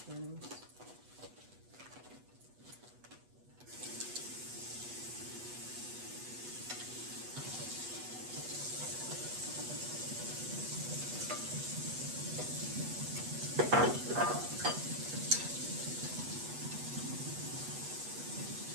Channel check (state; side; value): late; left; 8.2 ms